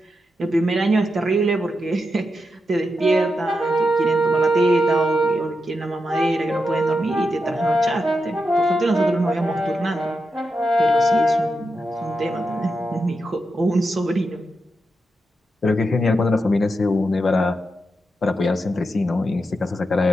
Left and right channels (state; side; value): normal; both; correlation 0.86